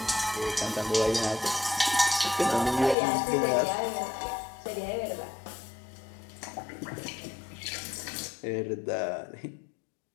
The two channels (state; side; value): drops out; right; at 3.0 s